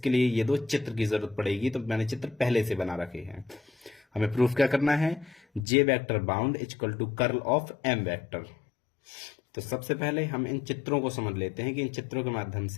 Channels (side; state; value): right; drops out; at 5.7 s